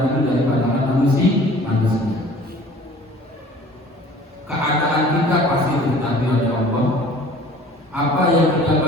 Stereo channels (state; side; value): normal; both; correlation 0.48